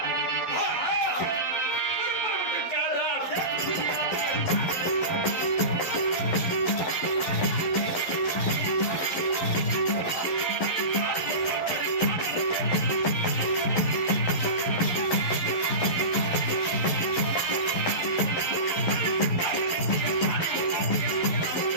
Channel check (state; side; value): late; right; 11 ms